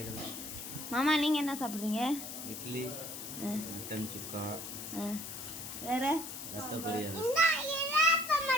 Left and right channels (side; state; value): left; noise; hiss, 8 dB below the sound